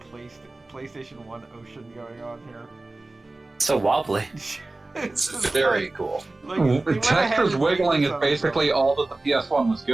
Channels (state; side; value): quieter; left; 3.0 dB